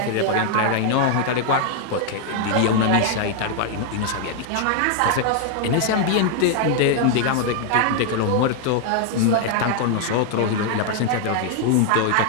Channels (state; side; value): different; both; correlation 0.00